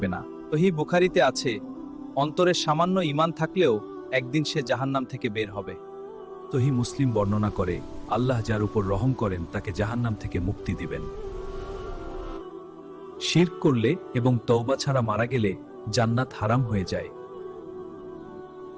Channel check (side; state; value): both; identical; correlation 1.00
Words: না। সহিহ বুখারীতে আছে, অন্তরে সামান্য ঈমান থাকলেও একদিন সে জাহান্নাম থেকে বের হবে। সহিহ মুসলিম বর্ণনা করে, আল্লাহ যার উপর রহম করেন তাকে জাহান্নাম থেকে মুক্তি দিবেন। শিরক করলে এবং তওবা ছাড়া মারা গেলে জান্নাত হারাম হয়ে যায়।